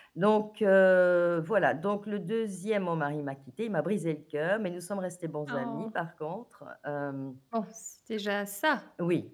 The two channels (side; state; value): both; identical; correlation 1.00